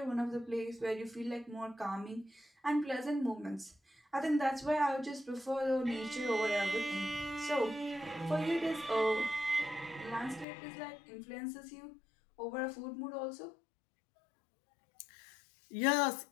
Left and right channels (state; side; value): drops out; right; at 10.5 s